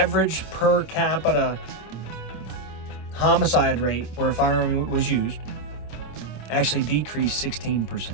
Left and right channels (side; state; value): right; late; 26 ms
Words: per capita homicide rate where a firearm was used actually decreased 16%.